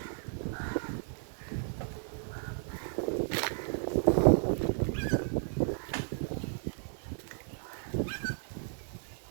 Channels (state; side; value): silent; left; 55 dB below the other